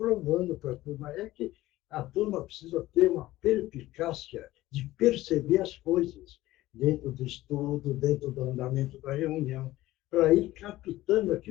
para a turma. É que a turma precisa ter uma perspicácia de perceber as coisas dentro do estudo, dentro do andamento da reunião, para ir captando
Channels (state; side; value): quieter; right; 16.6 dB